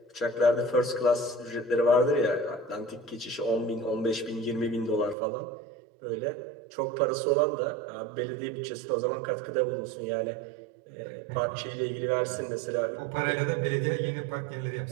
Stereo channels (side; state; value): left; drops out; at 5.2 s